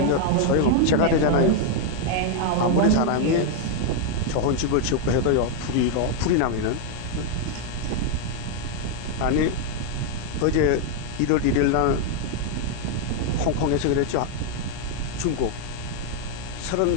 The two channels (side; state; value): both; different; correlation 0.00